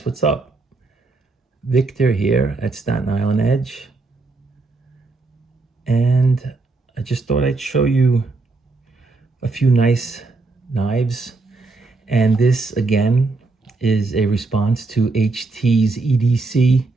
what's up? Victor here at Staten Island Edge. And I just thought I'd show you a few nice knives. And this again is a response to HT's EDC,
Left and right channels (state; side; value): quieter; left; 3.5 dB